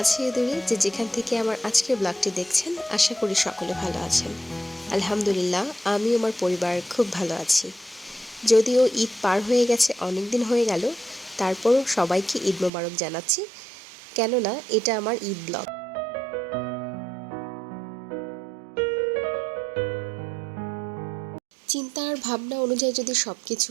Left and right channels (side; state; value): left; drops out; at 12.7 s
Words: দূরে যে যেখান থেকে আমার আজকের ব্লগটি দেখছেন, আশা করি সকলে ভালো আছেন। আলহামদুলিল্লাহ, আমি আমার পরিবার খুব ভালো আছি। যদিও ঈদ পার হয়ে গেছে, অনেক দিন হয়ে গেল, তারপরও সবাইকে ঈদ মোবারক জানাচ্ছি, কেননা এটা আমার ঈদ ব্লগ। চিন্তা আর ভাবনা অনুযায়ী যদি সব কিছু